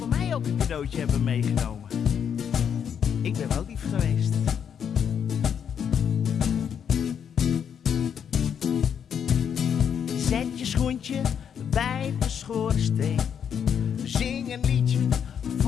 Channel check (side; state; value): right; quieter; 8.0 dB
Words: mij ook een cadeautje hebben meegenomen? Ik ben wel lief geweest. Zet je schoentje bij de schoorsteen, zing een liedje